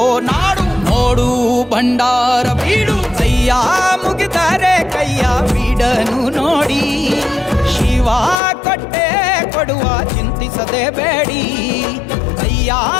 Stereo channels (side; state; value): right; drops out; at 8.4 s